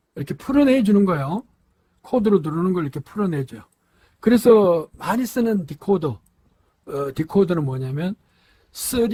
이렇게 풀어내 주는 거예요. 코드로 들어오는 걸 이렇게 풀어내줘요. 그래서 많이 쓰는 디코드는 뭐냐면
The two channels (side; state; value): both; identical; correlation 1.00